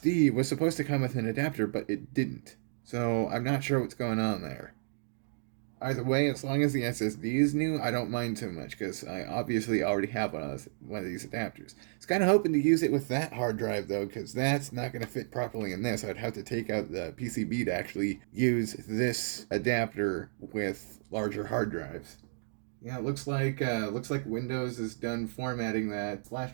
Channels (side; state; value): left; silent; digital silence